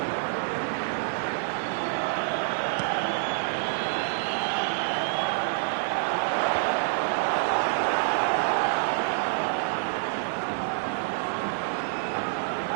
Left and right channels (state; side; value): silent; left; 60 dB below the other